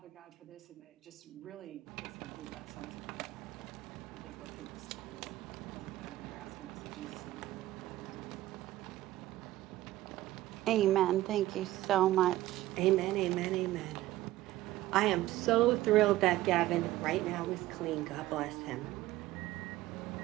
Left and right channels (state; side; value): quieter; left; 15.8 dB